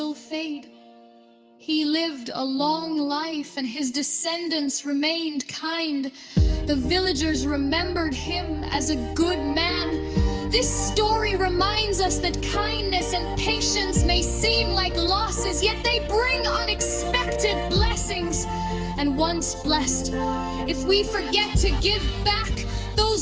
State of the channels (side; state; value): both; identical; correlation 1.00